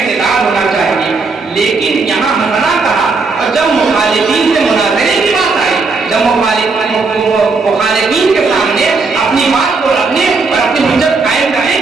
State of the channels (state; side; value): quieter; left; 4.1 dB